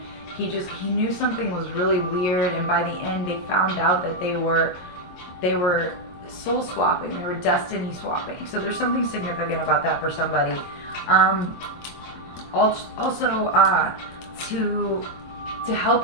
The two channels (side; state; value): right; late; 22 ms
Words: he knew something was really weird, and by the end they found out that they were soul swapping, they were destiny swapping. So there's something significant about that for somebody. Also, to